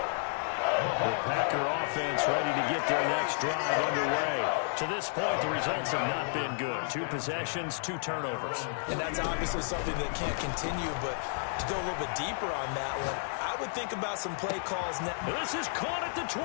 The Packer offense ready to get their next drive underway. To this point, the results have not been good. 2 possessions, 2 turnovers. And that's obviously something that can't continue, but to go a little bit deeper on that one, I would think about some play calls now. This is caught at the 20.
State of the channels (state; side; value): silent; right; 57 dB below the other